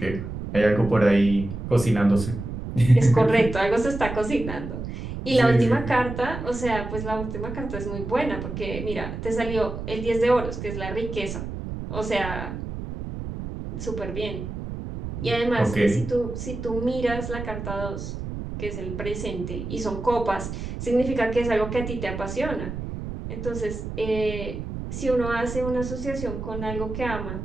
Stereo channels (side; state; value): right; noise; rumble, 7 dB below the sound